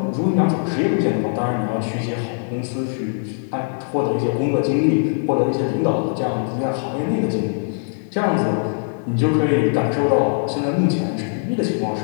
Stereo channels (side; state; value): right; silent; digital silence